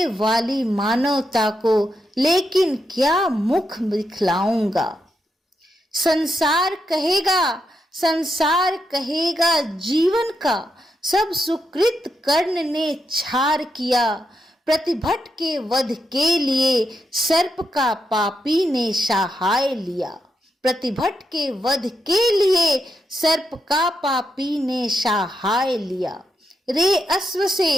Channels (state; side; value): normal; both; correlation 0.83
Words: वाली मानवता को लेकिन क्या मुख दिखलाऊंगा, संसार कहेगा जीवन का सब सुकृत कर्ण ने छार किया, प्रतिभट के वध के लिए सर्प का पापी ने सहाय लिया, प्रतिभट के वध के लिए सर्प का पापी ने सहाय लिया, रे